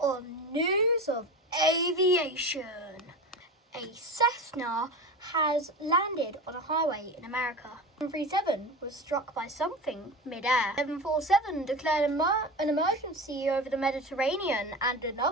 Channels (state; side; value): normal; both; correlation 0.28